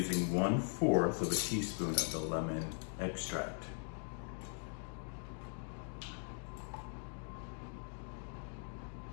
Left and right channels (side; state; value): right; silent; 51 dB below the other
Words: 1/4 of a teaspoon of the lemon extract.